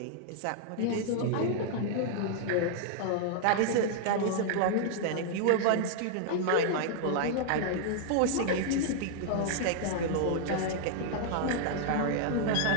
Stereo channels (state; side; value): different; both; correlation -0.01